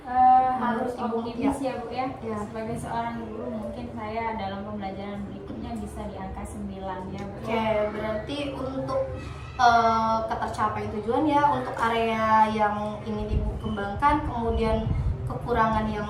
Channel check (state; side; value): identical; both; correlation 1.00